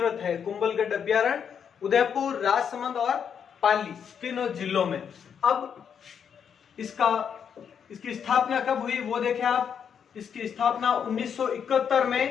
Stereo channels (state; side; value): quieter; right; 7.6 dB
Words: है कुंभलगढ़ अभ्यारण्य। उदयपुर, राजसमंद और पाली तीनों जिलों में। अब इसकी स्थापना कब हुई वो देखें आप। इसकी स्थापना 1971